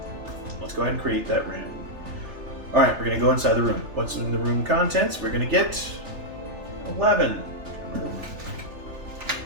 Let's go ahead and create that random. All right, we're gonna go inside the room. What's in the room contents? We're gonna get 11.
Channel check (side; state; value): left; late; 3.4 ms